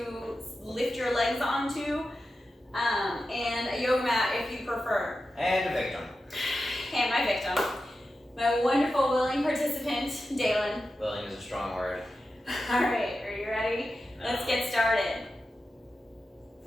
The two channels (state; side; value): normal; both; correlation 0.91